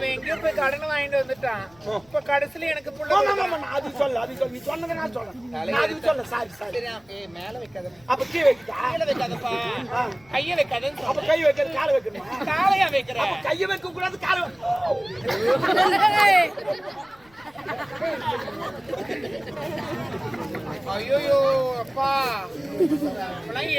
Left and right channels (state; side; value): noise; left; rumble, 30 dB below the sound